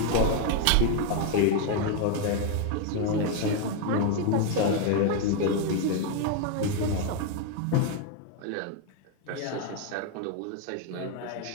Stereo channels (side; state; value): both; different; correlation 0.01